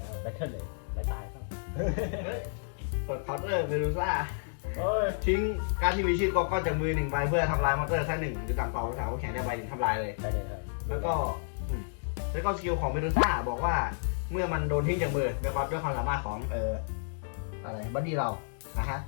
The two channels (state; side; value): silent; right; digital silence